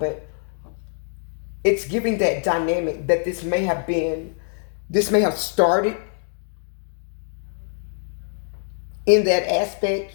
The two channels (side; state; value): right; silent; digital silence